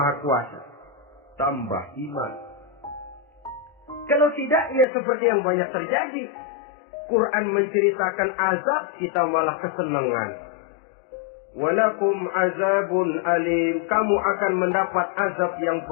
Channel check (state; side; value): drops out; right; at 4.9 s